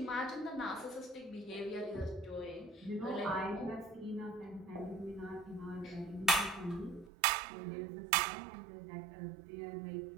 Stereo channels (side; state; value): left; drops out; at 7.1 s